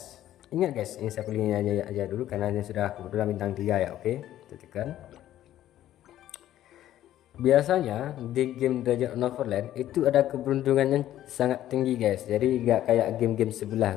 ini saya pilihnya aja dulu karena ini sudah kebetulan bintang 3 ya. Oke, tekan. Biasanya di game Dragon Neverland itu ada keberuntungan yang sangat tinggi guys. Jadi nggak kayak game-game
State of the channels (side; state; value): right; quieter; 12.7 dB